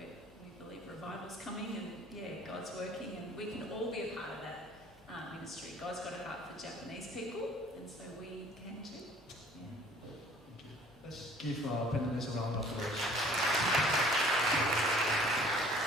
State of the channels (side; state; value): both; normal; correlation 0.53